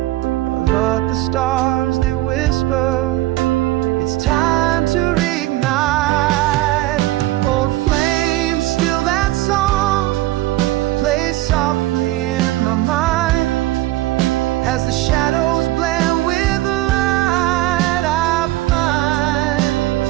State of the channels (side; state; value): left; quieter; 17.0 dB